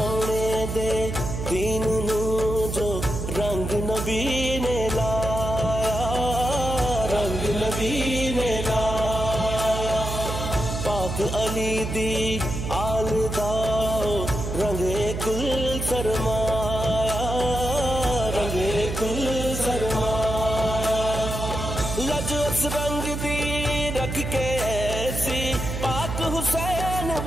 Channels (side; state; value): right; noise; hum, 4 dB below the sound